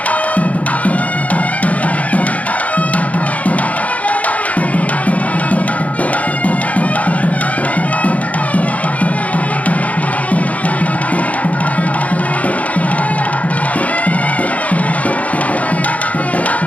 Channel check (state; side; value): late; right; 0.069 ms